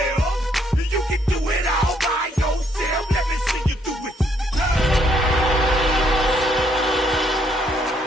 You can do it all by yourself. Let me see you do it.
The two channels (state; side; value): normal; both; correlation 0.70